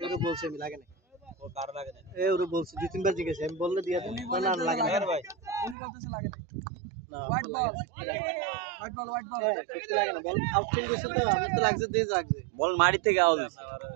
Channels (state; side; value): drops out; left; at 5.8 s